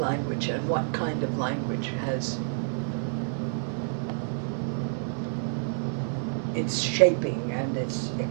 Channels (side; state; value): left; silent; digital silence